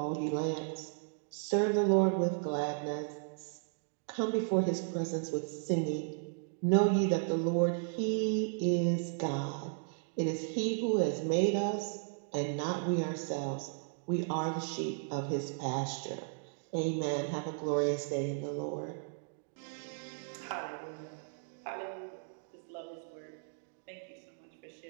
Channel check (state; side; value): silent; left; digital silence